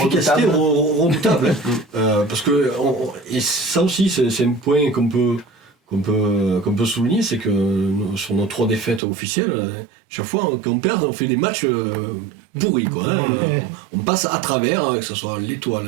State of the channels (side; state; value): left; drops out; at 9.0 s